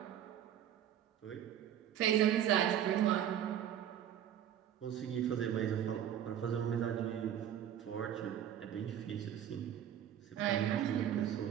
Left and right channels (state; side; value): quieter; left; 10.4 dB